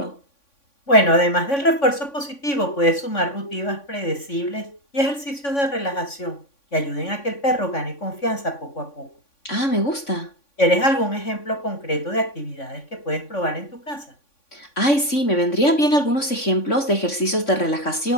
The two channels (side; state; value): right; late; 3.6 ms